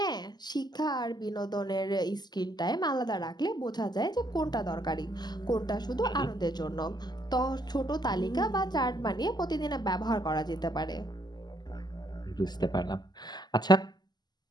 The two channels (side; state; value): right; late; 0.20 ms